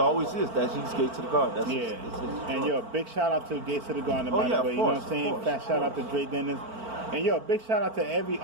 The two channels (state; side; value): late; left; 4.4 ms